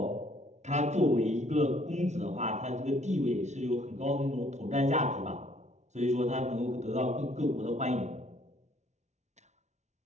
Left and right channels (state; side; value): late; left; 0.33 ms